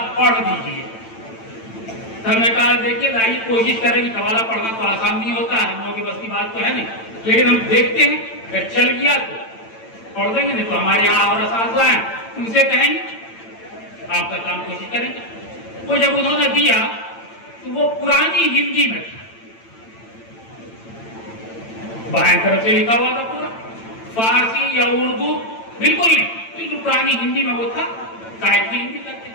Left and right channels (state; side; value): late; right; 8.9 ms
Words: پڑھ دیجئے. ہم نے کہا دیکھیے لائیے، کوشش کریں گے، قوالہ پڑھنا تو آسان نہیں ہوتا ہے، ہم لوگوں کی بس کی بات تو ہے نہیں، لیکن ہم دیکھتے ہیں اگر چل گیا تو پڑھ دیں گے، نہیں تو ہمارے یہاں اور اساتذہ ہیں ان سے کہیں گے، آپ کا کام کوشش کریں گے. وہ جب انہوں نے دیا تو وہ پرانی ہندی میں تھا، بائیں طرف سے لکھا ہوا تھا پورا، فارسی یا اردو بالکل نہیں، بالکل پرانی ہندی میں وہ تھا، قائد کی ہندی کرتے